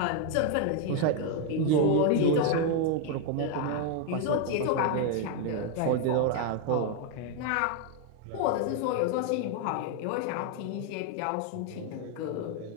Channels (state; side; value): different; both; correlation 0.01